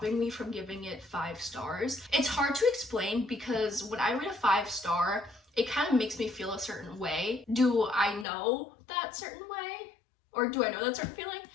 me from giving it 5 stars. It's hard to explain because when I read a 5-star, it kind of makes me feel a certain way. Do I know that certain way? Or do I know that certain feeling?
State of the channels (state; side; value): drops out; right; at 8.2 s